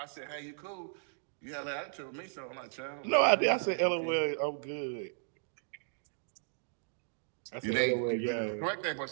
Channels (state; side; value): silent; left; digital silence